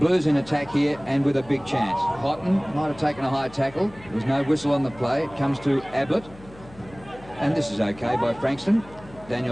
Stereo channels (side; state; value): left; noise; hum, 21 dB below the sound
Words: in attack here, and with a big chance. Houghton might have taken a high tackle. There was no whistle on the play. It comes to Ablett, and this is okay by Frankston.